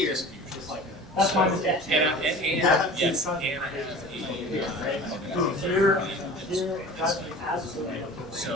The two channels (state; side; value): normal; both; correlation 0.40